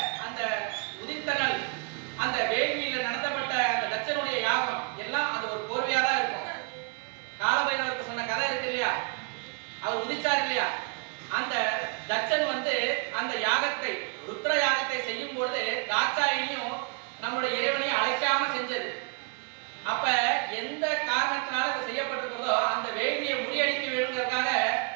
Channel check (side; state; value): left; quieter; 33.4 dB